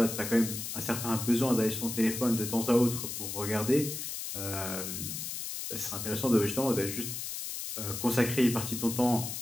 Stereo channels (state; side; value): noise; left; hiss, 5 dB below the sound